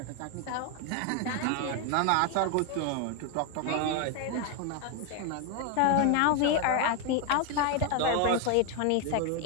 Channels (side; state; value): both; different; correlation 0.01